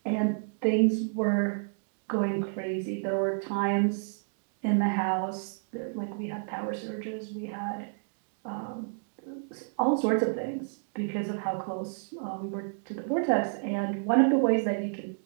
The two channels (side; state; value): left; silent; digital silence